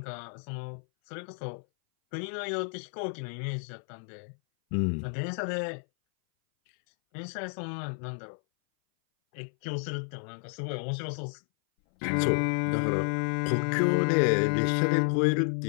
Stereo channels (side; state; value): right; silent; 58 dB below the other